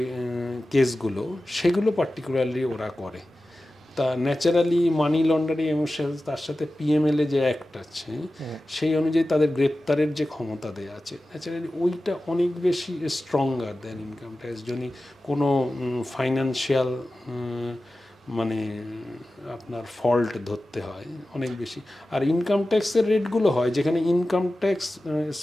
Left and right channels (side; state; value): both; normal; correlation 0.95